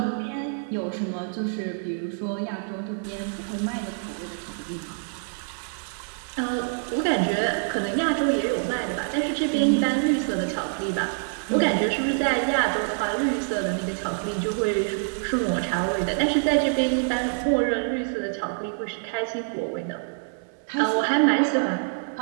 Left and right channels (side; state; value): left; silent; digital silence